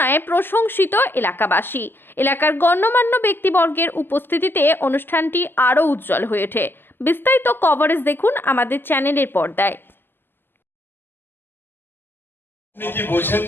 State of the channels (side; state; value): right; late; 0.098 ms